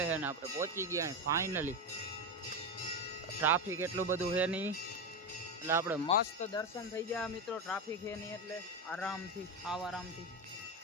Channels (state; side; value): normal; both; correlation 0.15